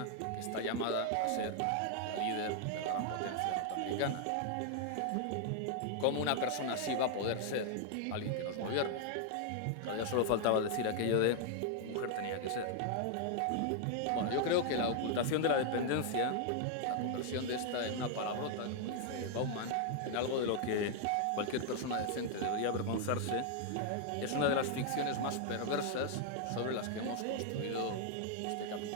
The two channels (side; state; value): both; different; correlation 0.00